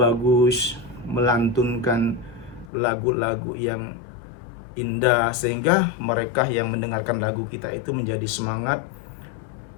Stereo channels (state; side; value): drops out; right; at 2.7 s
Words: melantunkan lagu-lagu yang indah, sehingga mereka yang mendengarkan lagu kita itu menjadi semangat,